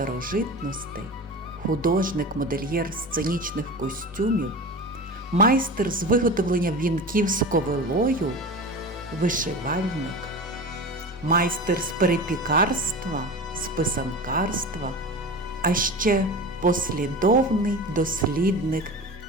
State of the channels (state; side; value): normal; both; correlation 0.31